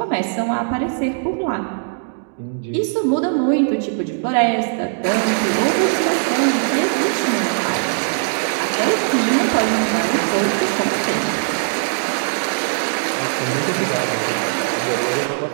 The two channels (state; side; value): silent; left; digital silence